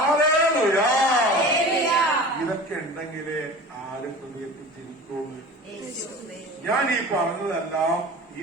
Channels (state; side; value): normal; both; correlation 0.37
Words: ഇതൊക്കെ ഉണ്ടെങ്കിലേ ആരും ഹൃദയത്തിൽ ജനിക്കുള്ളൂ. ഞാൻ ഈ പറഞ്ഞതെല്ലാം ഈ